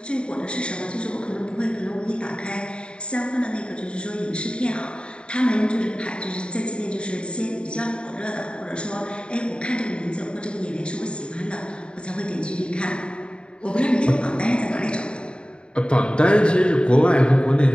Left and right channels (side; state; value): right; late; 0.053 ms